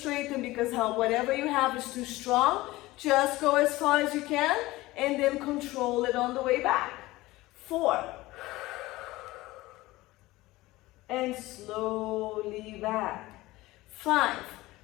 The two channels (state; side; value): quieter; right; 18.9 dB